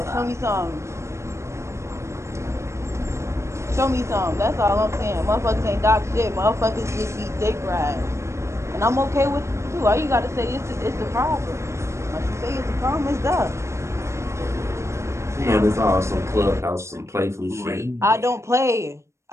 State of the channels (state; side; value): late; left; 0.13 ms